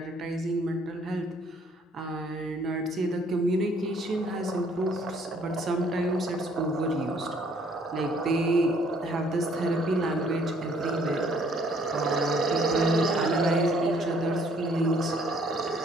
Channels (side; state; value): both; normal; correlation 0.62